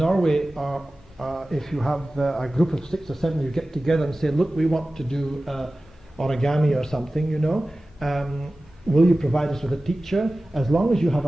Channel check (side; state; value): both; normal; correlation 0.96